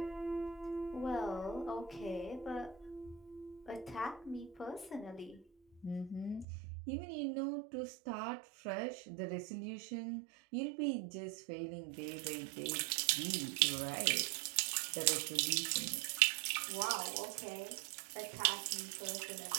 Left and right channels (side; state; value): left; drops out; at 6.5 s